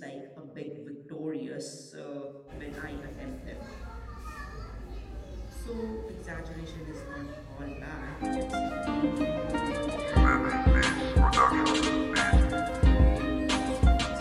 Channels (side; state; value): both; identical; correlation 1.00